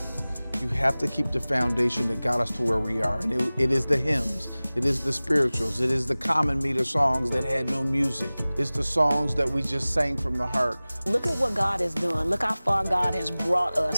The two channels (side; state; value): both; inverted; correlation -0.99